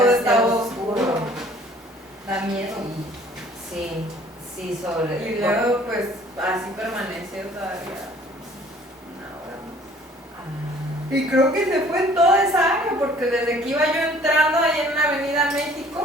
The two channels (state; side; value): normal; both; correlation 0.54